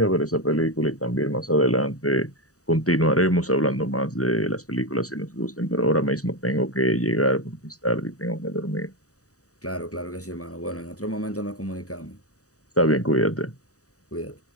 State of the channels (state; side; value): late; right; 0.66 ms